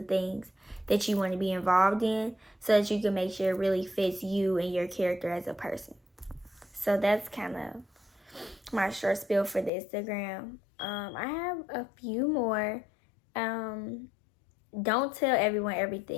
things that you want to be involved in, so that you can make sure it really fits you and your character as a person. So that's kind of my short spiel for the Instagram. I have a few more. Don't tell everyone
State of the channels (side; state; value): right; drops out; at 9.7 s